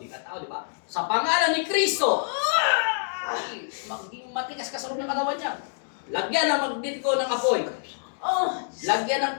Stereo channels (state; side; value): silent; right; digital silence